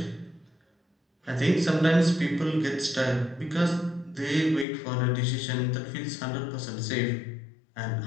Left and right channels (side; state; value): right; drops out; at 4.7 s